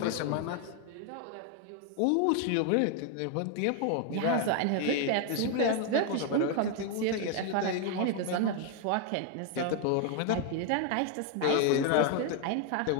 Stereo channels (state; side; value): different; both; correlation 0.01